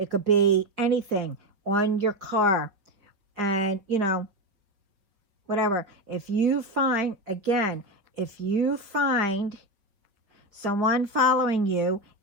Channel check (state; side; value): late; left; 4.9 ms